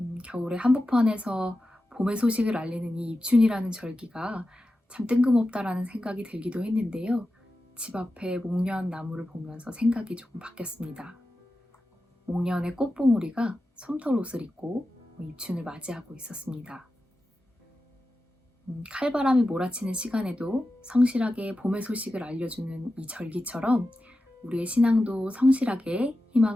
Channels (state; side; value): normal; both; correlation 0.92